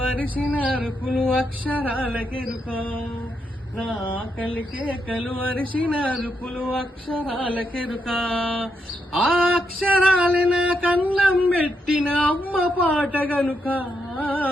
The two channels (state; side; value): normal; both; correlation 0.81